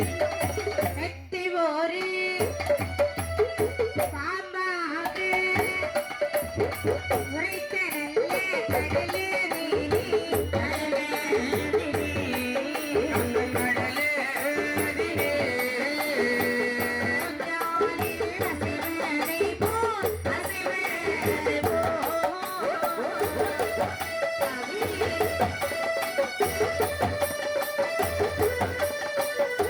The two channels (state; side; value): identical; both; correlation 1.00